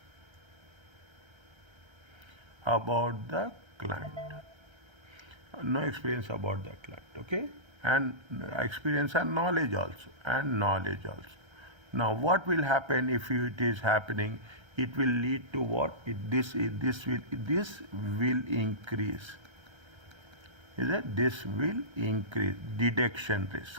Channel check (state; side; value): late; left; 1.3 ms